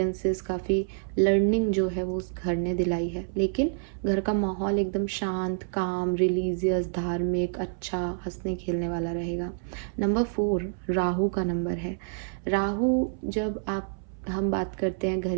काफ़ी लर्निंग जो है वो उस घर ने दिलाई है। लेकिन घर का माहौल एकदम शांत, काम, रिलीजियस, धार्मिक, अच्छा, हंसने खेलने वाला रहेगा। नंबर 4 राहु का नंबर है। राहु, जब हम बात करते हैं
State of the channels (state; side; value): silent; left; 60 dB below the other